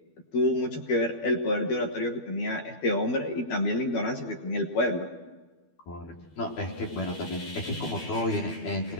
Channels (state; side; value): late; right; 12 ms